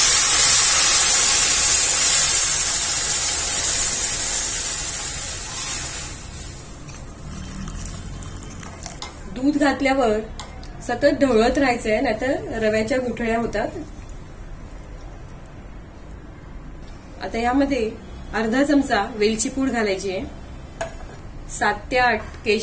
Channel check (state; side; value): identical; both; correlation 1.00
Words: दूध घातल्यावर सतत ढवळत राहायचंय, नाहीतर रव्याच्या गुठळ्या होतात. आता यामध्ये अर्धा चमचा वेलची पूड घालायची आहे. 7 ते 8